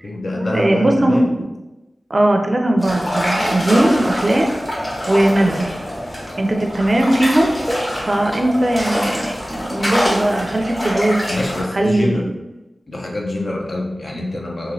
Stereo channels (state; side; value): normal; both; correlation 0.97